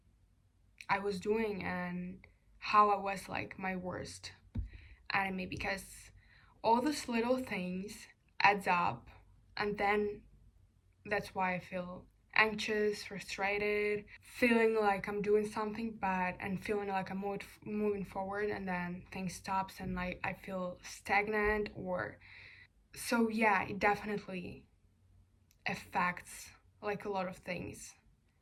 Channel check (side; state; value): both; identical; correlation 1.00